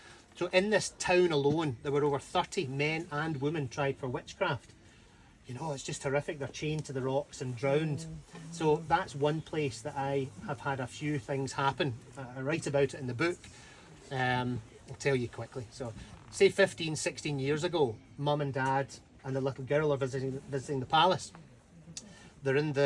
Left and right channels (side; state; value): both; identical; correlation 1.00